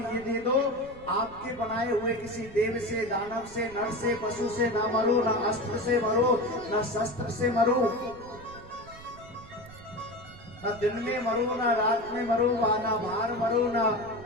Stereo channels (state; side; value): noise; right; rumble, 19 dB below the sound